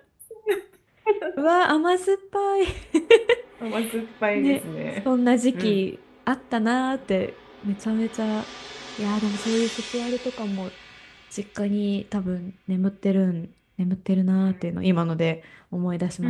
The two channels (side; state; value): both; identical; correlation 1.00